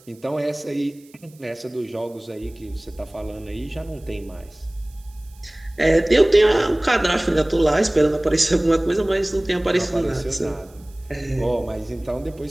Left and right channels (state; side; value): noise; right; hiss, 28 dB below the sound